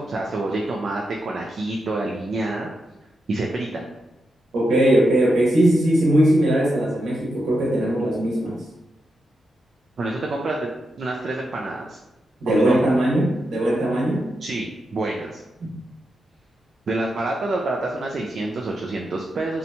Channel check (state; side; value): normal; both; correlation 0.86